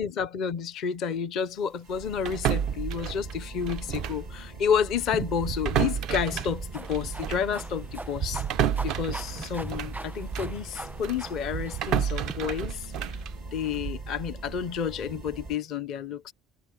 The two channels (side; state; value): both; normal; correlation 0.38